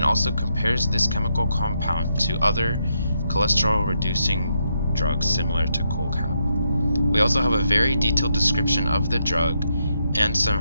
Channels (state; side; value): inverted; both; correlation -0.80